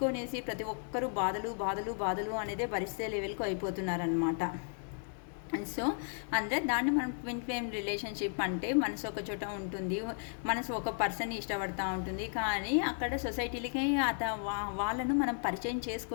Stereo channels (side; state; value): right; silent; 55 dB below the other